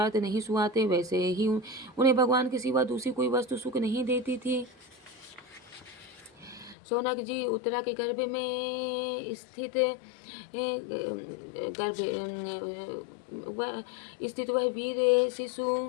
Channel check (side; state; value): right; drops out; at 6.8 s